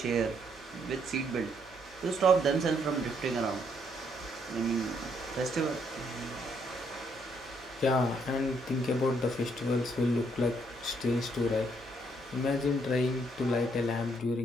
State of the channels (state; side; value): normal; both; correlation 0.71